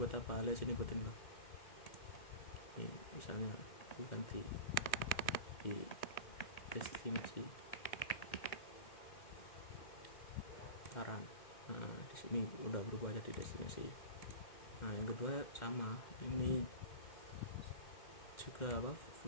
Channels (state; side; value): late; right; 1.6 ms